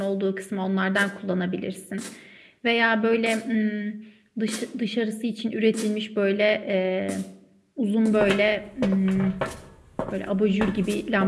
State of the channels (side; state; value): both; identical; correlation 1.00